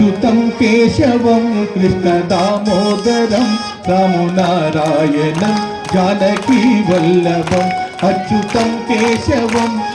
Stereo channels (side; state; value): both; identical; correlation 1.00